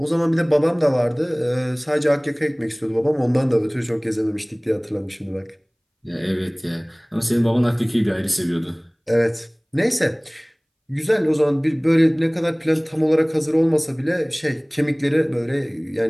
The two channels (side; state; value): both; identical; correlation 1.00